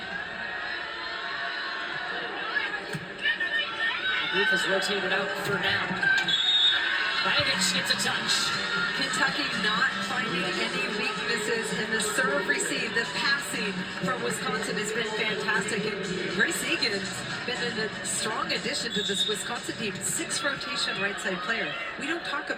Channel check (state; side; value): identical; both; correlation 1.00